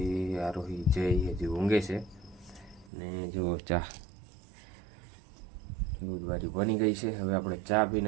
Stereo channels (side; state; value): left; drops out; at 2.9 s